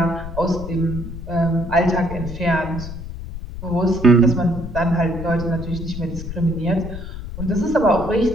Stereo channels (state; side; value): noise; left; rumble, 9 dB below the sound